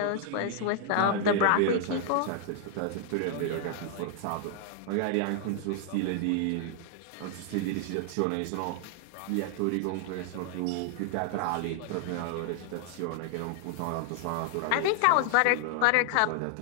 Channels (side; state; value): both; different; correlation 0.00